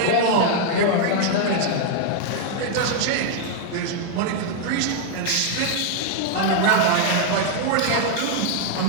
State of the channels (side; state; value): both; different; correlation 0.00